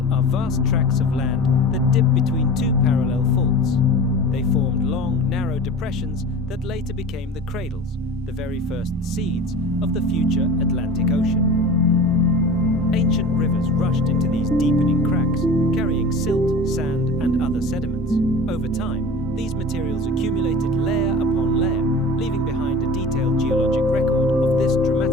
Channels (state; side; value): normal; both; correlation 0.36